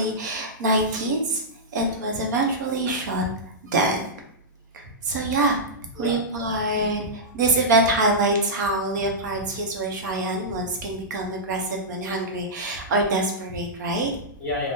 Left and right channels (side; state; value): both; normal; correlation -0.11